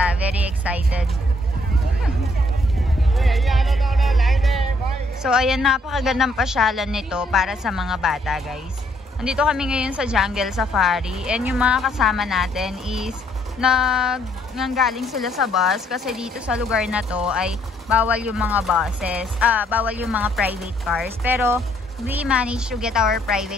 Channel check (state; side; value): normal; both; correlation 0.69